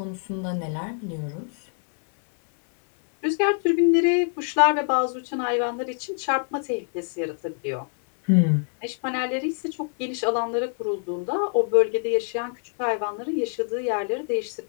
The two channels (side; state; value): right; silent; 55 dB below the other